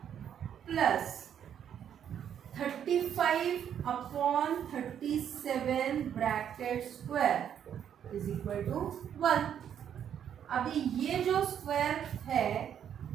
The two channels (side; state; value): left; quieter; 9.1 dB